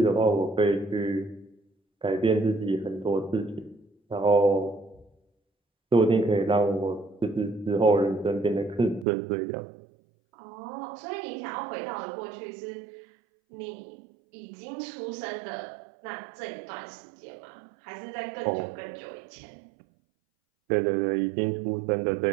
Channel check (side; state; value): left; drops out; at 9.1 s